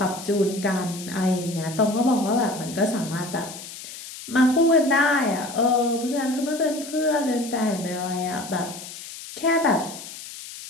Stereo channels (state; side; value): noise; left; hiss, 12 dB below the sound